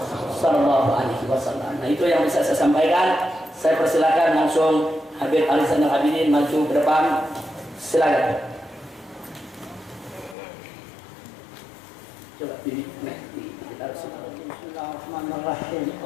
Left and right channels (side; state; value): right; drops out; at 10.4 s